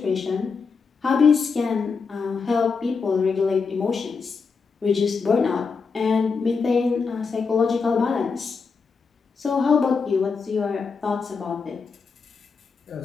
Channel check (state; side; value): quieter; right; 5.1 dB